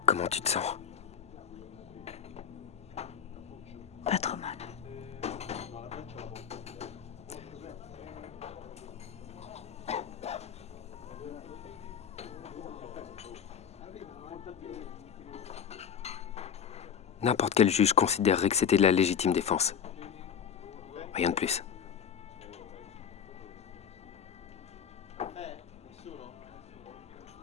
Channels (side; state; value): right; quieter; 7.8 dB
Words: Comment tu te sens? Pas trop mal. N'importe quel juge considérerait que c'était de la légitime défense. Rien de plus.